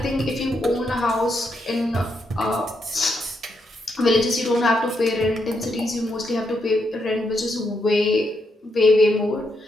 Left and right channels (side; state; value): both; normal; correlation 0.80